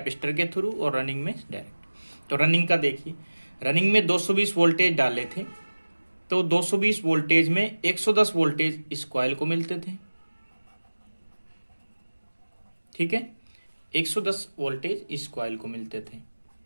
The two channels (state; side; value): inverted; both; correlation -1.00